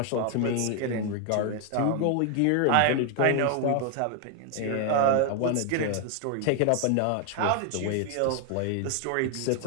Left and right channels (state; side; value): different; both; correlation 0.00